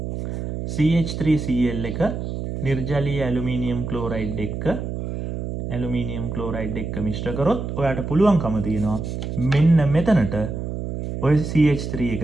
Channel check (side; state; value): right; noise; hum, 5 dB below the sound